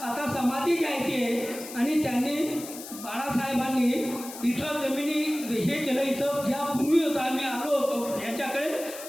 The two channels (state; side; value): noise; left; hiss, 12 dB below the sound